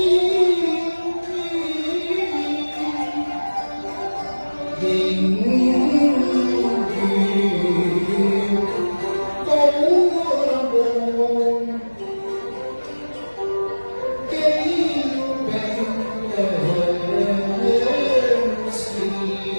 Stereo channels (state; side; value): inverted; both; correlation -1.00